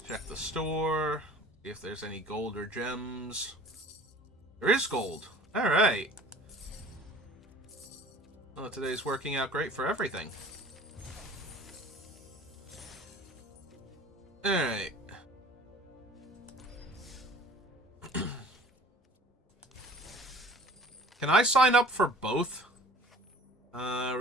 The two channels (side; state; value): both; normal; correlation 0.47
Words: Check the store, see if there's any gold or gems. There is gold. Alright. Well, today's working out great for everything. Alright. Can I sign up for both?